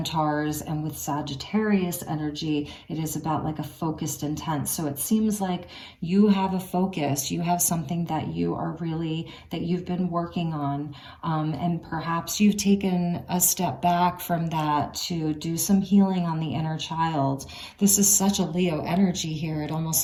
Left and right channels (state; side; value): identical; both; correlation 1.00